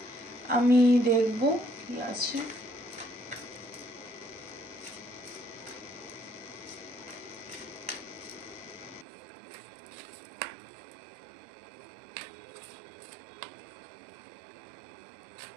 আমি দেখব কি আছে।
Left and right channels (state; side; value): drops out; left; at 9.1 s